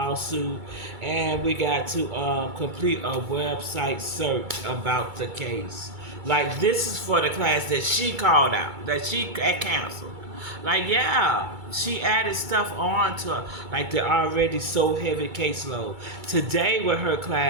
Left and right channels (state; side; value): late; left; 2.3 ms